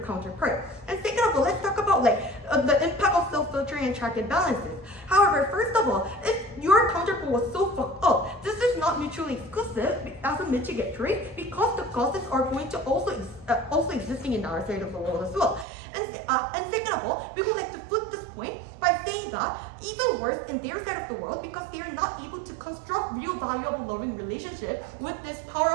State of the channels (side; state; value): left; drops out; at 15.7 s